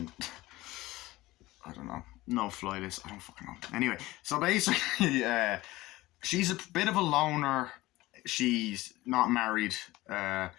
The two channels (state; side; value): quieter; right; 18.6 dB